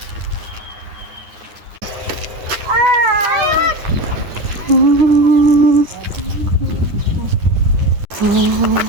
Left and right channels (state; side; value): late; left; 9.8 ms